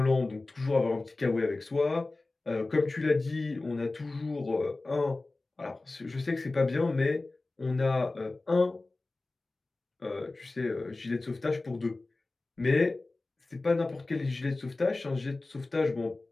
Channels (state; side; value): quieter; right; 3.2 dB